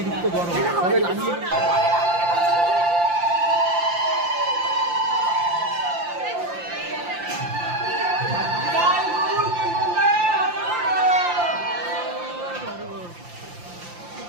গরম, তবে লাগিয়ে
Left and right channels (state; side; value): late; left; 5.8 ms